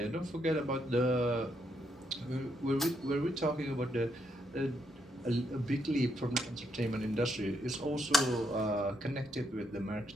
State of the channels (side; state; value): both; normal; correlation 0.77